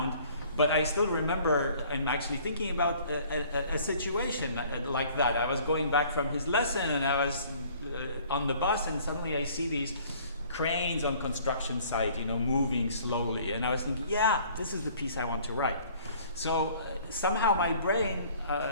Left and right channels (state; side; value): inverted; both; correlation -0.54